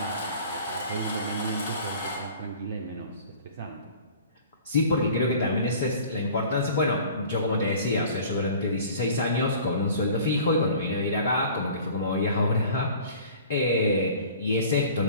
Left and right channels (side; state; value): both; inverted; correlation -0.46